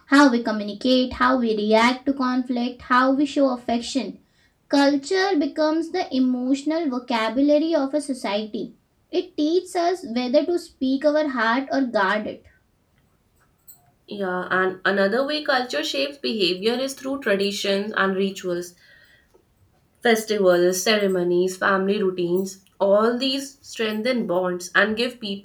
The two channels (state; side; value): identical; both; correlation 1.00